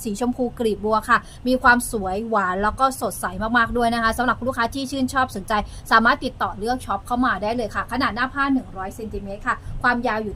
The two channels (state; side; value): identical; both; correlation 1.00